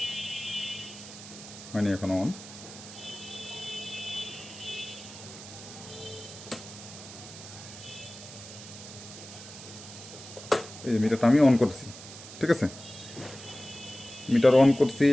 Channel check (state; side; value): noise; right; hiss, 14 dB below the sound